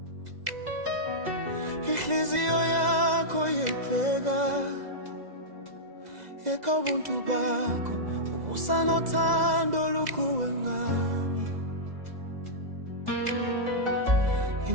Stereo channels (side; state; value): left; late; 2.0 ms